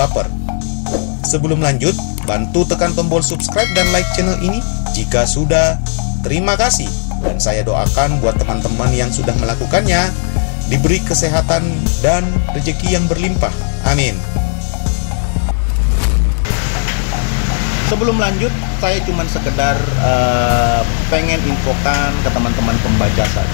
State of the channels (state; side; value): silent; right; digital silence